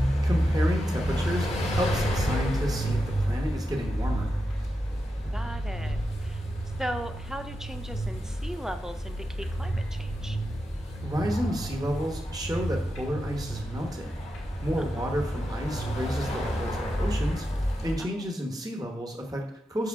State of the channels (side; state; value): both; normal; correlation 0.88